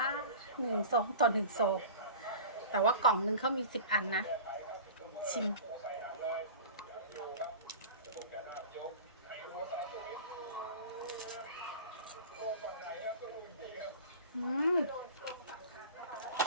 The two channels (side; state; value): both; inverted; correlation -0.37